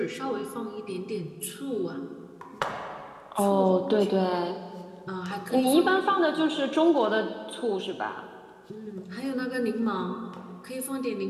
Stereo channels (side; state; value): both; identical; correlation 1.00